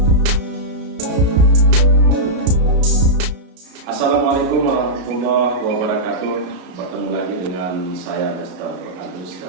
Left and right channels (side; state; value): left; late; 33 ms